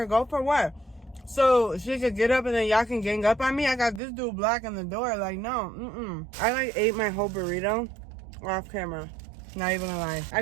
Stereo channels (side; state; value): left; drops out; at 4.0 s